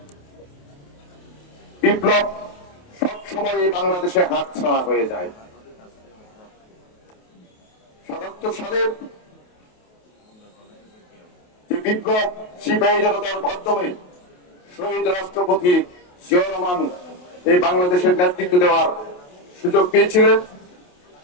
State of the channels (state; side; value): late; right; 28 ms